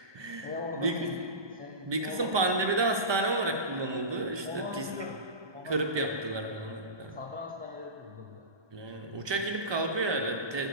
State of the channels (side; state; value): left; late; 1.2 ms